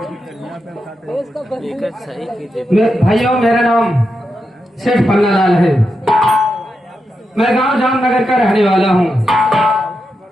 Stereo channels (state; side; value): normal; both; correlation 0.86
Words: भाइयों, मेरा नाम सेठ पन्नालाल है, मैं गांव जामनगर का रहने वाला हूँ।